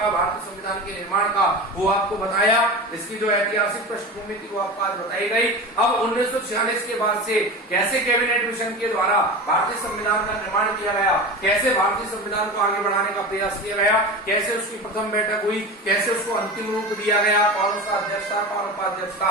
भारतीय संविधान के निर्माण का, वो आपको बताया। इसकी जो ऐतिहासिक पृष्ठभूमि थी वो आपको आज बताई गई। अब 1946 के बाद से कैसे कैबिनेट मिशन के द्वारा भारतीय संविधान का निर्माण किया गया, कैसे भारतीय संविधान को आगे बढ़ाने का प्रयास किया गया, कैसे उसकी प्रथम बैठक हुई, कैसे उसको अंतिम रूप दिया गया, कौन सा अध्यक्ष था, कौन उपाध्यक्ष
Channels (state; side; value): normal; both; correlation 0.28